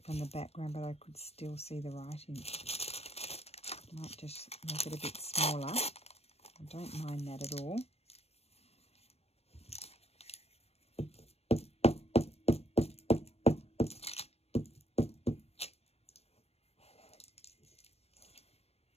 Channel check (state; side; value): late; right; 0.30 ms